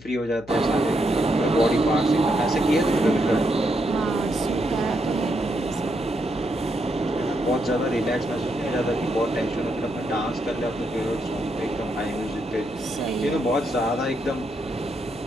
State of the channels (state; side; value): noise; left; hum, 22 dB below the sound